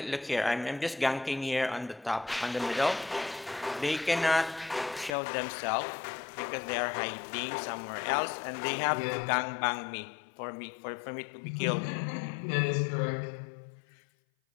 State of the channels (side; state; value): right; drops out; at 5.1 s